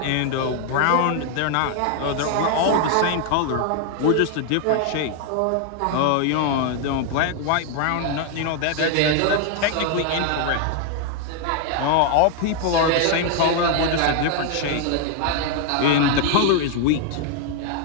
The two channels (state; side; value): different; both; correlation 0.00